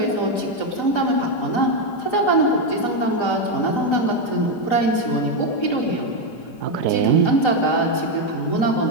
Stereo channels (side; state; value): right; late; 4.9 ms